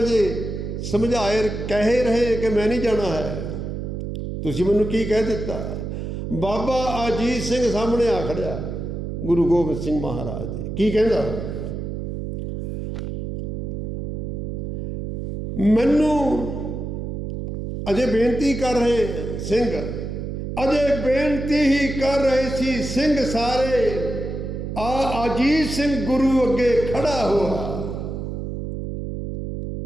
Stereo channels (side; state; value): right; noise; hum, 5 dB below the sound